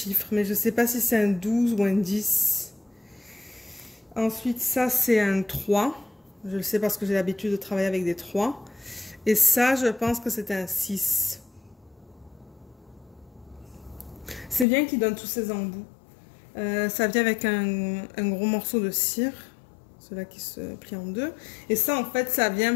mais je sais pas si c'est un 12 ou un 10. Ensuite, ça, c'est un 3. Je le sais parce que j'ai l'habitude de travailler avec des 3. Et ça, je pense que c'est un 6. C'est bien qu'il donne tous ces embouts. Ça vient avec un gros morceau de cire. Celui-là qui se plie en deux. Et ça, en fait, ça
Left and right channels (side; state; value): right; drops out; at 14.7 s